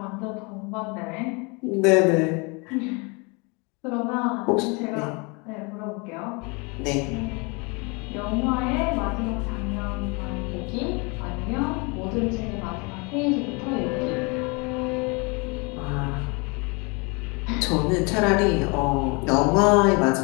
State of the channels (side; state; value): right; quieter; 30.2 dB